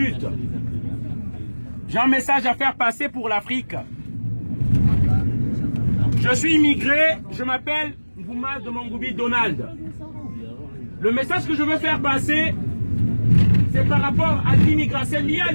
J'ai un message à faire passer pour l'Afrique. Je suis immigré, je m'appelle Ngouma de Mongoubi Donald. Le message que je veux faire passer, c'est par rapport à l'immigration, c'est lié à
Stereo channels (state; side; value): inverted; both; correlation -1.00